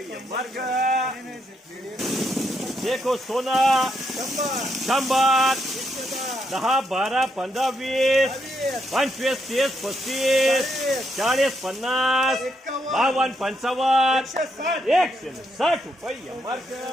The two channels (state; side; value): normal; both; correlation 0.78